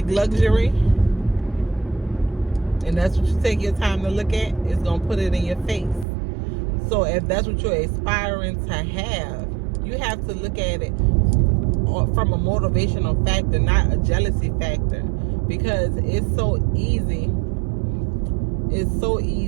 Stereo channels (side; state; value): left; drops out; at 6.1 s